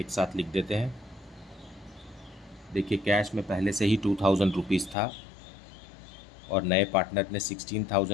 साथ लिख देते हैं। देखिए कैश में पहले से ही 2,000 रुपीज़ था और नए पार्टनर ने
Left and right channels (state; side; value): drops out; right; at 5.0 s